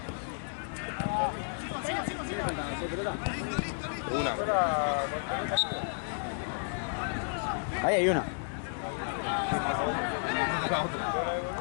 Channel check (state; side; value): silent; right; digital silence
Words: Ahí hay una.